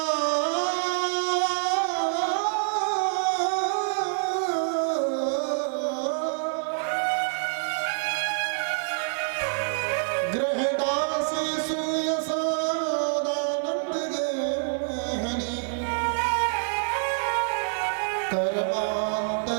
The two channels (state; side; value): silent; left; digital silence